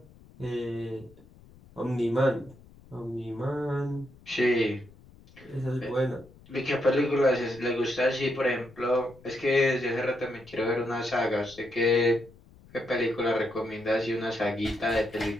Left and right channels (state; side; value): noise; left; rumble, 24 dB below the sound